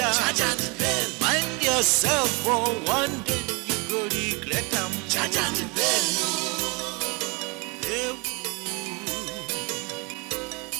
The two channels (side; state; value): left; quieter; 29.6 dB